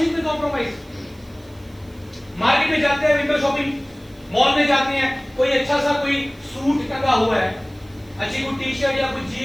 में कॉम्प्रोमाइज। मार्केट में जाते हैं, विंडो शॉपिंग, मॉल में जाते हैं, कोई अच्छा सा कोई सूट टंगा हुआ है, अच्छी कोई टी शर्ट या कोई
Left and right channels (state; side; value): noise; right; hiss, 30 dB below the sound